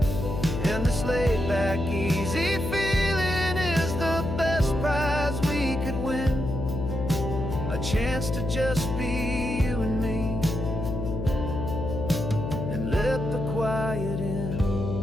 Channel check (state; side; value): noise; left; hum, 4 dB below the sound